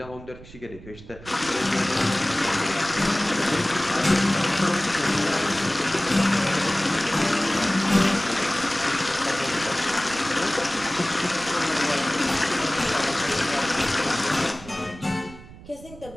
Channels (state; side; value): noise; right; rumble, 18 dB below the sound